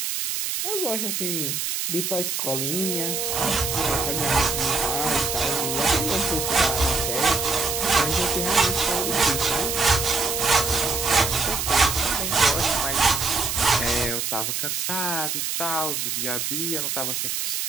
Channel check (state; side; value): noise; right; hiss, 1 dB below the sound